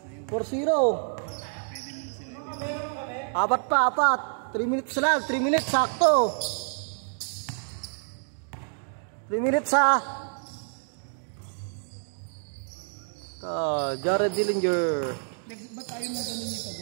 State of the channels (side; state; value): left; silent; digital silence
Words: 4-0. 4 pa. 3 minutes na lang. 3 minutes sakto. 3 minutes ha. Jared Dillinger. Ba't tayo mo ganun yung